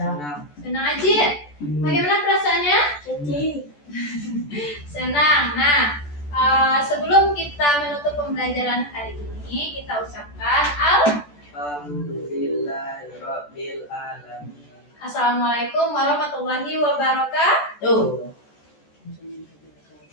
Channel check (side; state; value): right; late; 14 ms